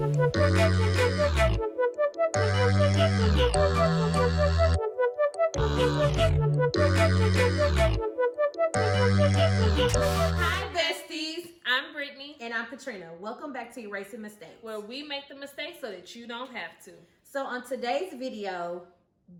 besties. I'm Brittany. And I'm Katrina. Welcome back to Erasing Mistakes, where we make the mistakes so that you don't have to. So on today's video,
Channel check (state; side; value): identical; both; correlation 1.00